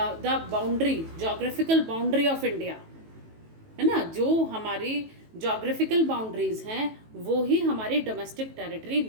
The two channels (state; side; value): late; left; 18 ms